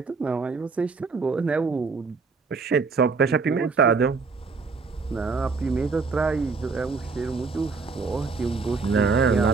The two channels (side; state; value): left; quieter; 4.5 dB